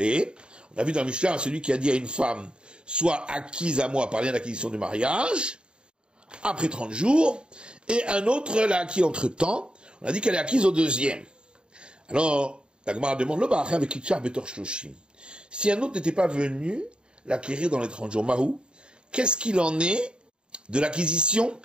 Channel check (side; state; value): left; late; 0.051 ms